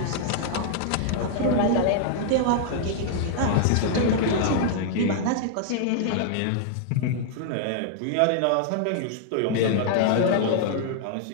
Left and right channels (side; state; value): both; different; correlation -0.01